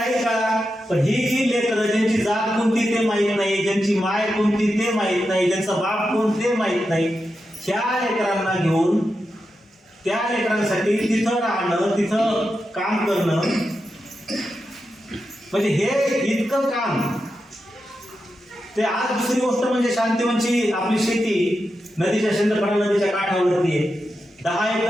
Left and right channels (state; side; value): normal; both; correlation 0.88